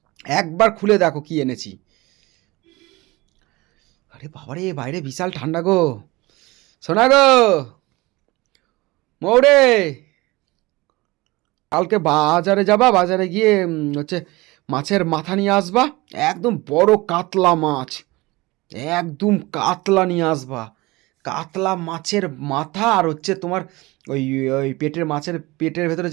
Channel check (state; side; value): quieter; left; 21.7 dB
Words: একবার খুলে দেখো কি এনেছি। আরে বাবারে, বাইরে বিশাল ঠান্ডা গো। শোনা গো মৌরে, কালকে বাজারে যাবা, বাজারে গিয়ে হচ্ছে মাছের মাথা নিয়ে আসবা। একদম বড় কাতলা মাছ, একদম কাতলা নিয়ে আসবা। কাতলা মাছের মাথা, আর হচ্ছে তোমার ওই ওই পেটের মাছের পেটের ভেতরে